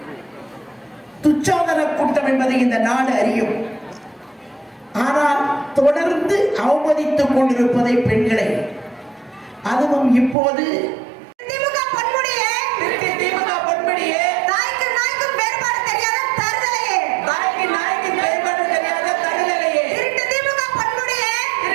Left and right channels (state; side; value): drops out; left; at 10.4 s